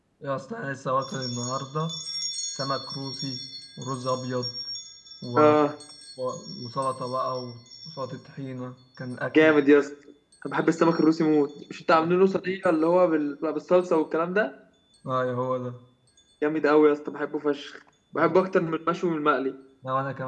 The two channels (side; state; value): both; identical; correlation 1.00